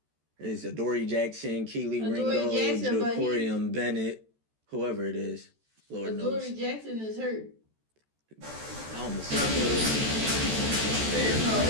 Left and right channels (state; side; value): late; left; 14 ms